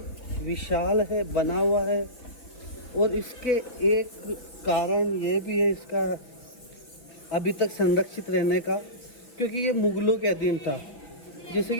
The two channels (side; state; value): right; late; 3.6 ms